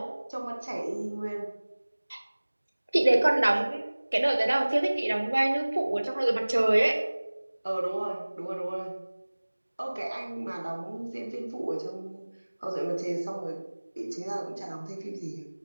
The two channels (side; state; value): both; inverted; correlation -1.00